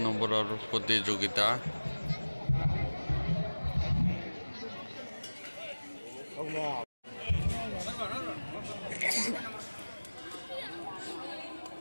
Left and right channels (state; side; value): inverted; both; correlation -1.00